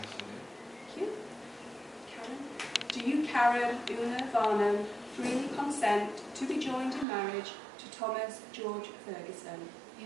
I do. Thank you. Karen. Do you, Karen Una Varnum, freely consent to be joined in marriage to Thomas George Ferguson?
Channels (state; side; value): drops out; left; at 7.1 s